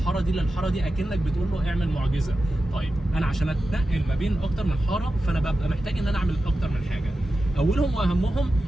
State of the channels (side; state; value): both; normal; correlation 0.92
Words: دي للحاره دي اكنك بتقول له اعمل معجزه. طيب انا عشان اتنقل ما بين اكتر من حاره فانا ببقى محتاج ان انا اعمل اكتر من حاجه. اولهم واهمهم